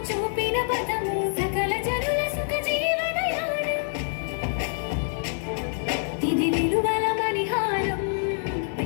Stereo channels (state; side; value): silent; right; digital silence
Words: చూపిన పదము సకల జనుల సుఖ జీవనయానం ఇది విలువల మణిహారం